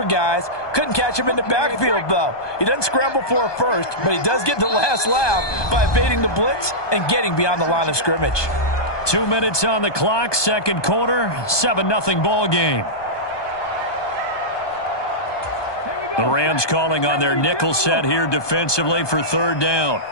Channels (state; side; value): late; right; 1.2 ms